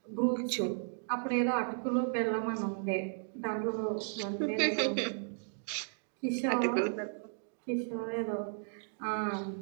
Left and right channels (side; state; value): left; silent; digital silence